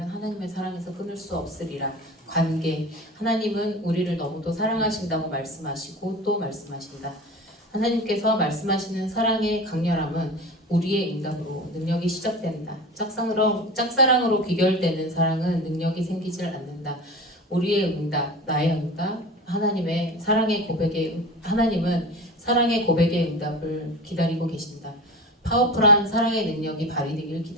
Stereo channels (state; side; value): normal; both; correlation 0.32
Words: 하나님의 사랑에서 끊을 수 없으리라. 관계 하나님은 우리를 너무도 사랑하신다고 말씀하시고 또 말씀하신다. 하나님께서 말씀하시는 사랑의 강렬함은 우리의 응답으로 능력이 시작된다. 짝사랑으로 귀결되는 사랑은 능력이 생기질 않는다. 우리의 응답, 나의 응답, 하나님은 사랑의 고백의 응답을 기다리고 계신다. 파워풀한 사랑의 능력이 발휘되길